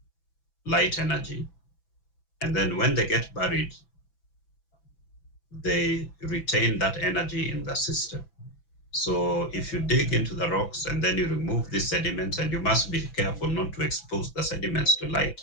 light energy, and then when they get buried, they retain that energy in the system. So if you dig into the rocks and then you remove these sediments, and you must be careful not to expose the sediments to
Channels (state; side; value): late; right; 6.0 ms